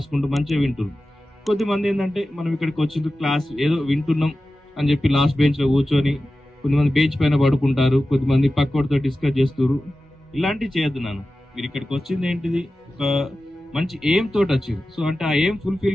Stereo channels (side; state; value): both; normal; correlation 0.94